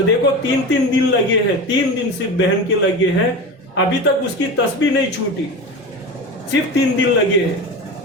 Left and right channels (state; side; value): normal; both; correlation 0.27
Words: دیکھو 3 دن لگے ہیں، 3 دن صرف بہن کے لگے ہیں، ابھی تک اس کی تسبیح نہیں چھوٹی، صرف 3 دن لگے ہیں،